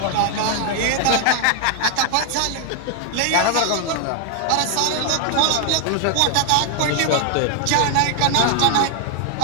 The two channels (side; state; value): both; different; correlation 0.00